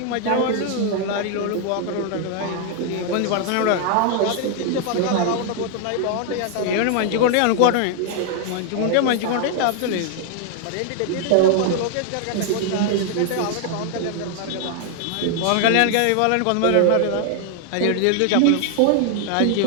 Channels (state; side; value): different; both; correlation 0.00